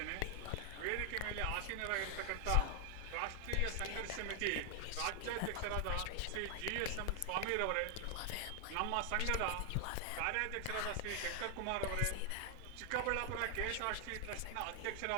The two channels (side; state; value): both; different; correlation 0.00